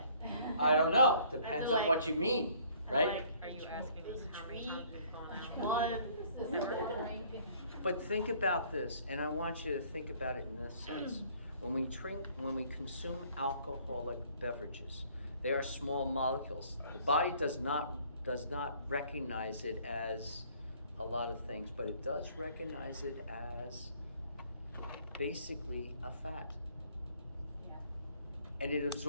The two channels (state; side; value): inverted; both; correlation -0.59